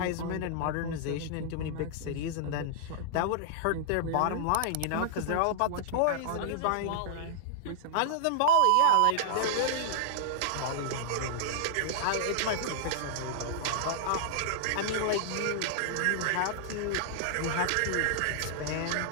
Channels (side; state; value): both; different; correlation -0.01